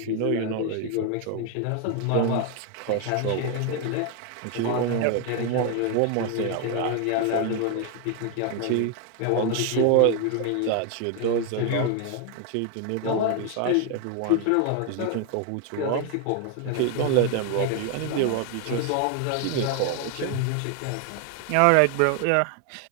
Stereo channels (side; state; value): both; different; correlation 0.01